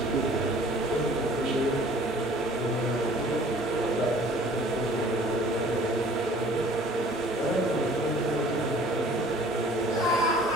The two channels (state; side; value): normal; both; correlation 0.51